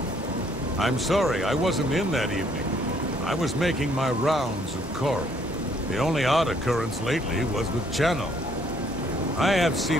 I'm sorry, I wasn't in that evening. I was making my rounds of Coral. The only odd occurrence lately was with Channel. I have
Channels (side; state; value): both; normal; correlation 0.65